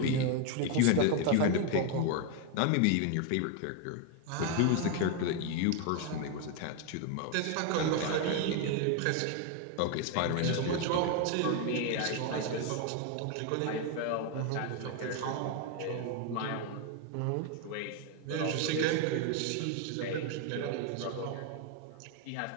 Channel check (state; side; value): different; both; correlation 0.01